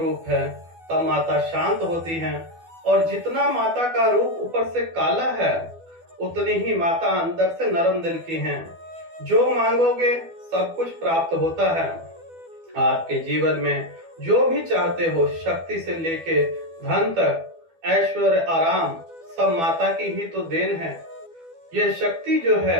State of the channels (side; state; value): left; late; 12 ms